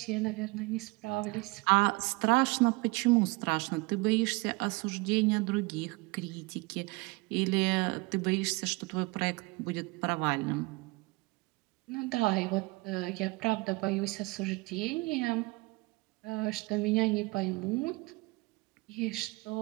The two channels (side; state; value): left; quieter; 25.3 dB